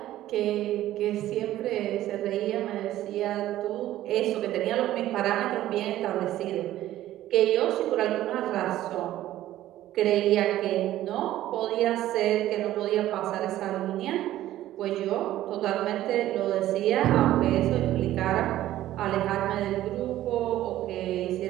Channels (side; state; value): left; quieter; 14.0 dB